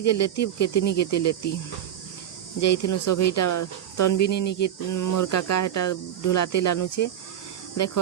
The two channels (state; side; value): quieter; left; 10.4 dB